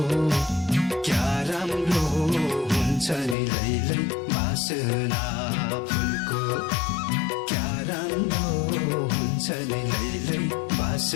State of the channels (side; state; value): right; drops out; at 3.4 s